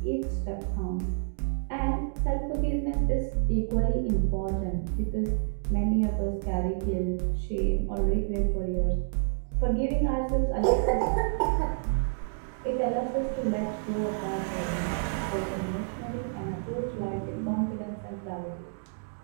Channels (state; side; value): silent; left; digital silence